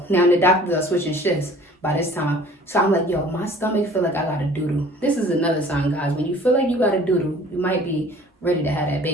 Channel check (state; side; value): normal; both; correlation 0.50